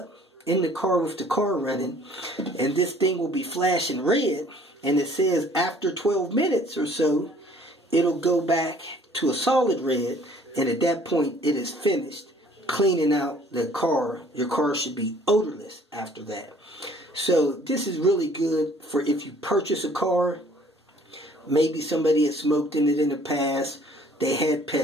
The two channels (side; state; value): both; normal; correlation 0.56